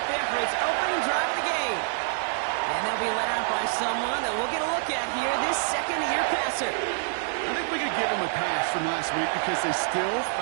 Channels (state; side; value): silent; left; digital silence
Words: there for its opening drive of the game. And they'll be led out by someone that we'll get a look at here, this second-year passer. I think we could give him a pass from last week because they still